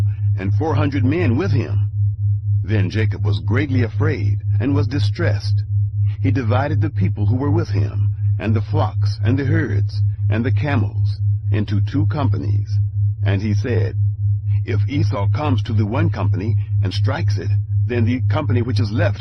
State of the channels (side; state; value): both; identical; correlation 1.00